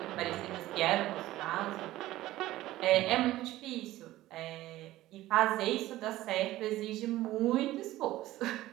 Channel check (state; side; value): quieter; left; 15.9 dB